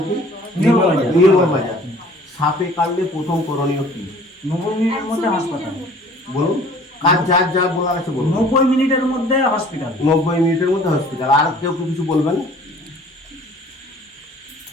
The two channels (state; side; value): normal; both; correlation 0.51